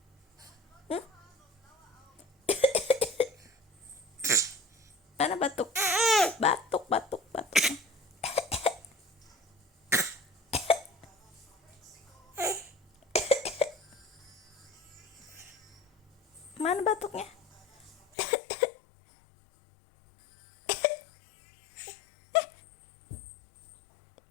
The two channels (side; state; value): right; drops out; at 18.1 s